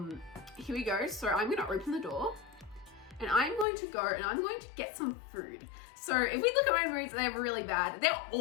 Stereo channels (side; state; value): right; drops out; at 3.7 s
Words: here we go. So I'm gonna open the door and I'm going to go and I'm going to get some food. So if we look at my moods, they're really bad. They're